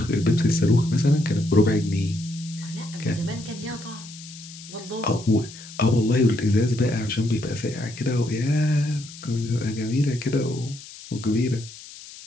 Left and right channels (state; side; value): noise; left; hiss, 16 dB below the sound